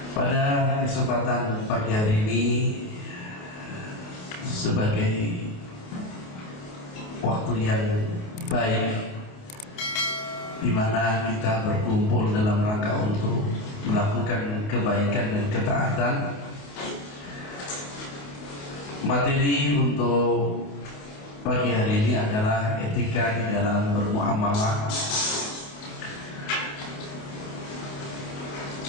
Pada kesempatan pagi hari ini, sebagai waktu yang baik di mana kita berkumpul dalam rangka untuk melakukan kebaikan dan ketaatan, materi untuk pagi hari ini adalah etika di dalam bermuamalah.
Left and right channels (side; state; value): right; late; 28 ms